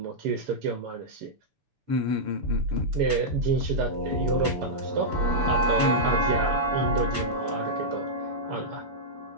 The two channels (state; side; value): late; left; 6.9 ms